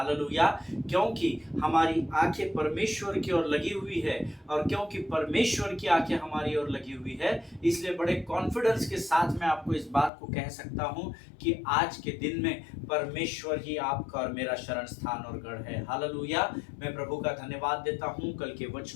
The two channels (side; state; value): right; drops out; at 10.1 s